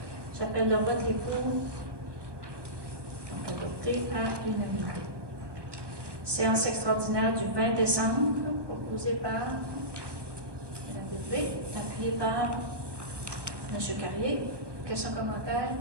J'appelle le vote. Les pour. Donc adopté à l'unanimité. Séance extraordinaire du 20 décembre, proposée par Mme Bérubé, appuyée par M. Carrier. Questions, commentaires?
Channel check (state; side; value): late; left; 1.1 ms